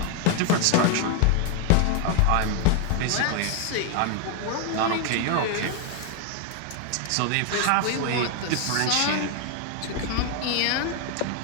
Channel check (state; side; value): different; both; correlation 0.00